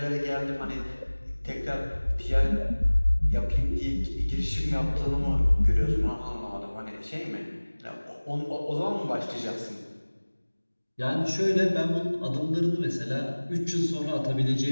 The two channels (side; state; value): both; inverted; correlation -1.00